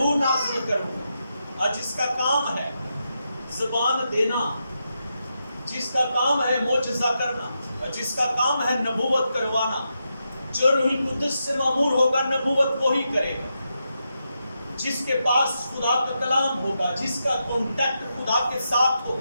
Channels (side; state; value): both; inverted; correlation -0.85